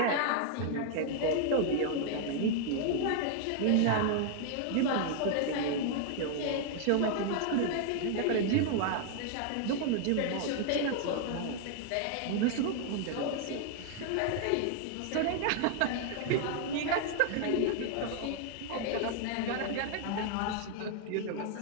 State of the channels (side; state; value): both; different; correlation 0.00